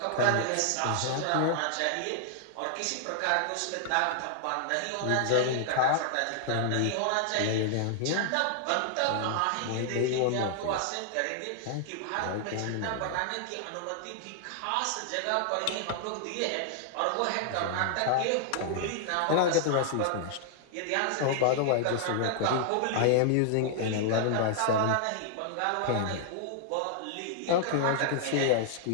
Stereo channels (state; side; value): different; both; correlation -0.01